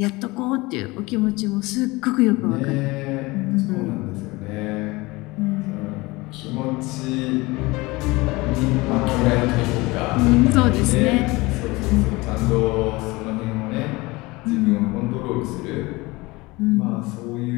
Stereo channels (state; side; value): quieter; right; 22.5 dB